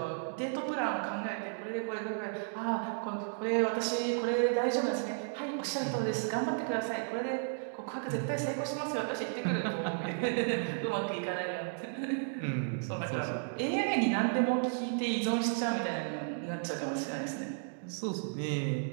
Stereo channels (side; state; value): left; silent; digital silence